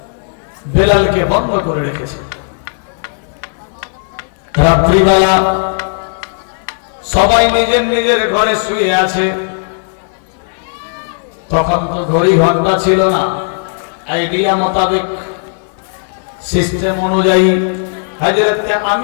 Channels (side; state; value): right; silent; digital silence